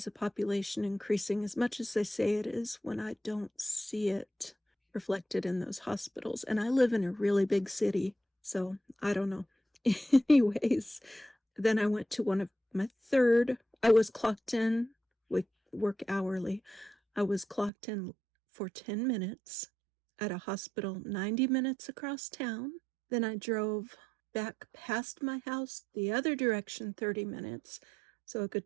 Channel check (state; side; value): drops out; left; at 17.7 s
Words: the population increasing as much as they say it is when I don't see it reflected in those hospitals. And I live in a really big city, so I don't know. Anyways, then I went to one of my third. I was clocked in. We work hourly. I was clocked in for 10 minutes at a hospital 90 minutes across town. Then I drove back past my house the other direction 30 minutes, so a